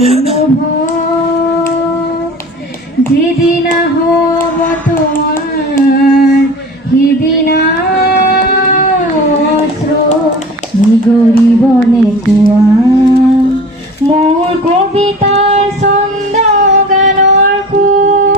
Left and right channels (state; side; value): normal; both; correlation 0.38